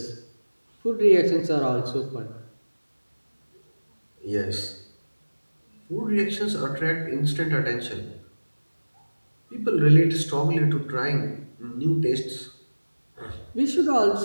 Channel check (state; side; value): inverted; both; correlation -1.00